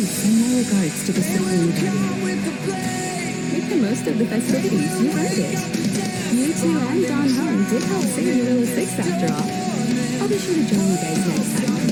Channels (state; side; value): identical; both; correlation 1.00